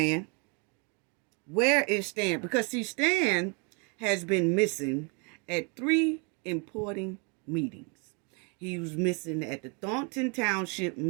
Where is Stan? Because, see, Stan has been missing at three important meetings. He was missing at the Thornton Township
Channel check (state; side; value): quieter; left; 34.6 dB